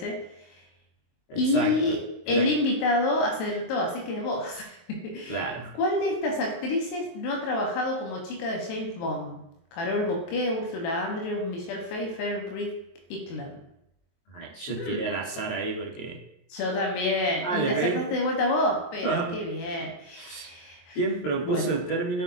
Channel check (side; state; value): right; late; 23 ms